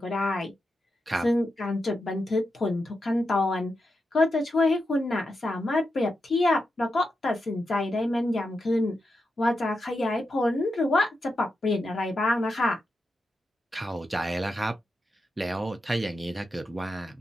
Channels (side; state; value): both; normal; correlation 0.88